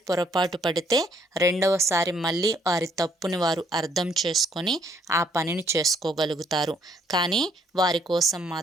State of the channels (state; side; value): normal; both; correlation 0.66